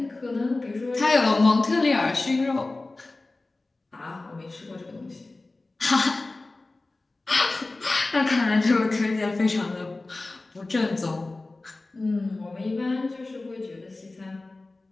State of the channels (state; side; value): quieter; right; 3.2 dB